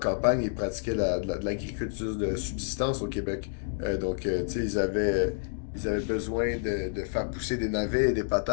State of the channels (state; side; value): silent; right; digital silence